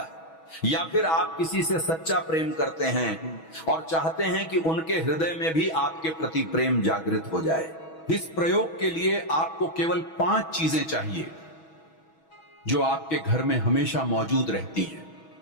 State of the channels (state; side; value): late; right; 6.2 ms